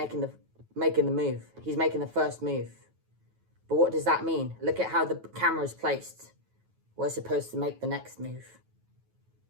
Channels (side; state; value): left; late; 9.3 ms